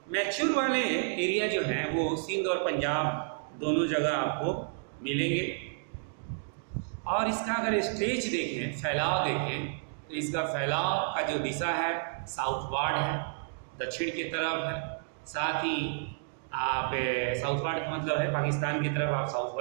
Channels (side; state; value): left; silent; digital silence